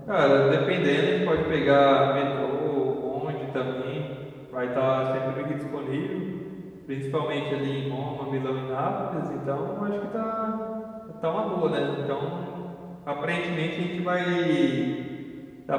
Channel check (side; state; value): both; identical; correlation 1.00